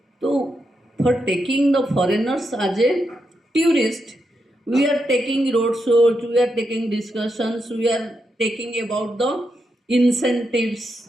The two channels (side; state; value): both; normal; correlation 0.84